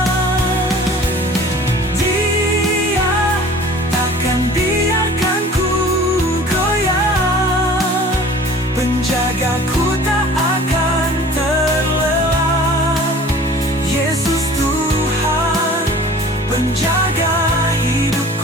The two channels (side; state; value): both; normal; correlation 0.45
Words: Dia takkan biarkan ku goyah, penjagaku tak akan terlelap. Yesus Tuhan, penjaga